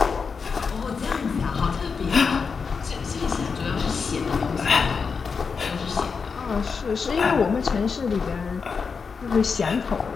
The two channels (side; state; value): right; quieter; 5.4 dB